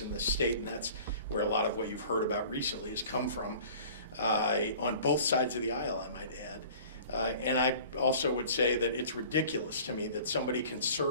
in this state, and that's where a lot of what you've heard about recently has come from, on both sides of the aisle, I might add. And I also would say that it's ridiculous to me that somebody can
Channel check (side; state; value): both; inverted; correlation -0.46